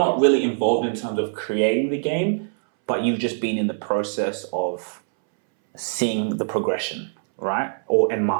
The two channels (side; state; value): left; silent; 63 dB below the other